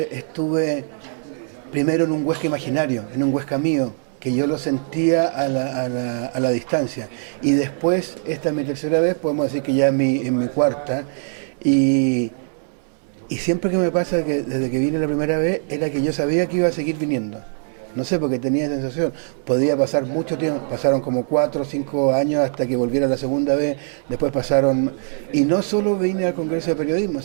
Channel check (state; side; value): silent; left; 65 dB below the other